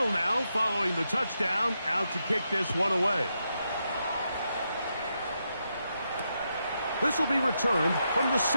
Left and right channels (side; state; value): both; inverted; correlation -0.83